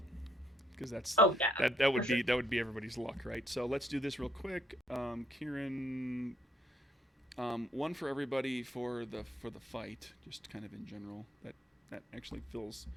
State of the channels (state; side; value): normal; both; correlation 0.68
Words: because that would be everybody's luck, right? So let's do this real quick. Kieran, one for everybody for the fight, just kind of in general. That actually fills